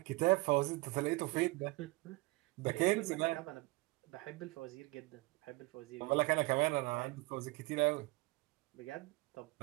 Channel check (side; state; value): left; quieter; 23.4 dB